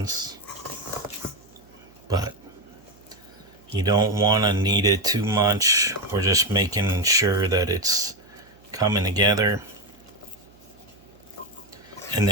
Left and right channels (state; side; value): noise; right; hum, 29 dB below the sound